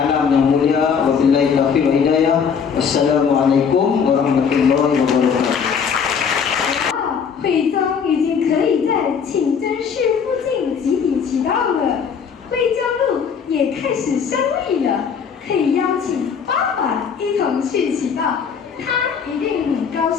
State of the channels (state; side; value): quieter; right; 6.7 dB